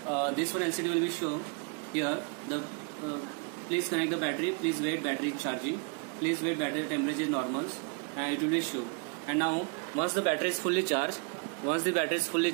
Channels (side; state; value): left; quieter; 35.9 dB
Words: one LCD will be show here the please connect the battery, please wait, battery is charging, please wait, battery temperature is normal, and it will be show. And now once the battery is fully charged,